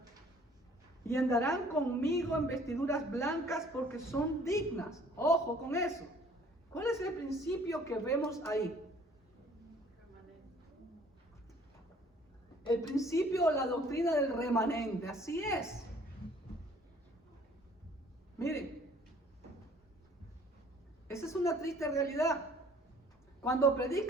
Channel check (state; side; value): normal; both; correlation 0.55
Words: y andarán conmigo en vestiduras blancas porque son dignas. Ojo con eso. ¿Cuál es el principio que vemos ahí? El principio o la doctrina del remanente. Así es. Miren, esa es una triste realidad. Cuando